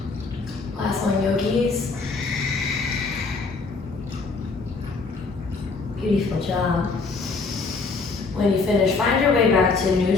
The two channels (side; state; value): right; quieter; 4.2 dB